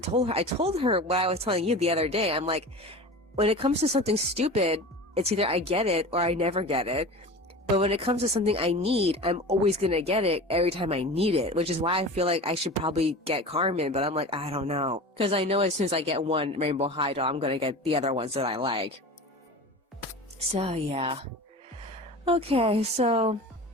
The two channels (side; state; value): both; normal; correlation 0.33